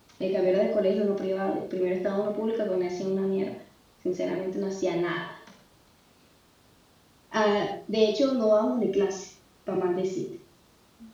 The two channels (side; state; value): both; identical; correlation 1.00